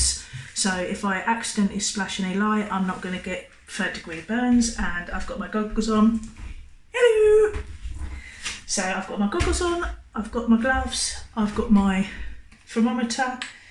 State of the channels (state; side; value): identical; both; correlation 1.00